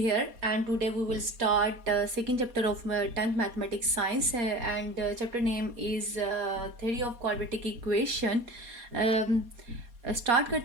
and today we will start second chapter of 10th mathematics science and chapter name is theory of quadratic equation. Start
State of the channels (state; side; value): late; left; 4.2 ms